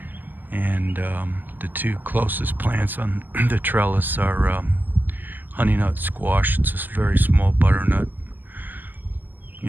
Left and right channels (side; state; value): left; late; 0.088 ms